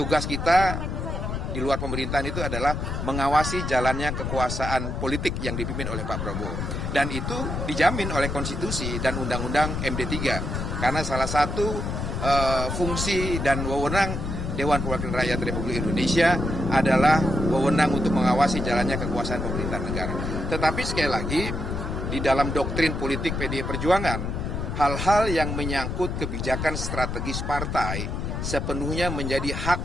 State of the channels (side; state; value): left; noise; rumble, 3 dB below the sound